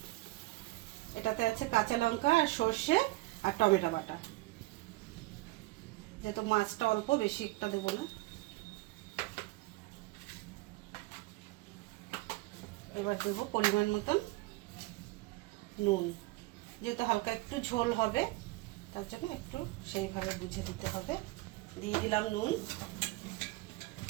এটাতে আছে কাঁচা লঙ্কা আর সর্ষে আর টমেটো বাটা। যেহেতু মাছটা অল্প, বেশি একটা দেবো না। এবার দেবো পরিমাণ মতন নুন। যেহেতু হালকা একটু ঝোল হবে, তার জন্য একটু সেইভাবে বুঝে দিতে হবে। দিয়ে দিলাম নুন,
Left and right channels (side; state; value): left; quieter; 20.8 dB